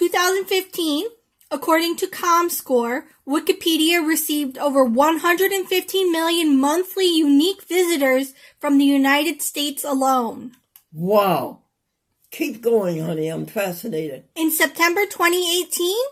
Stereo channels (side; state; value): both; identical; correlation 1.00